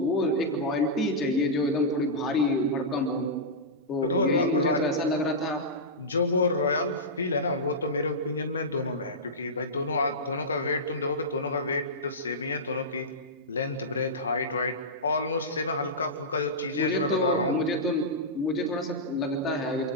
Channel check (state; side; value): normal; both; correlation -0.13